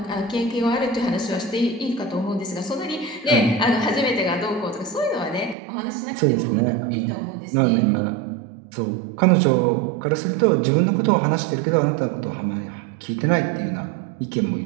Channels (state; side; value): drops out; left; at 5.6 s